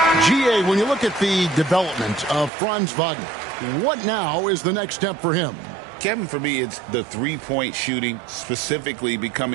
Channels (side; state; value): left; drops out; at 2.5 s